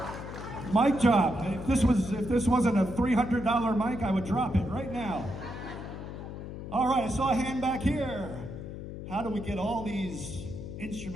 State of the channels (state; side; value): noise; left; hum, 9 dB below the sound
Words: Mic drop. If this wasn't a $300 mic, I would drop it right now. All right, I saw a hand back here. How do we get all these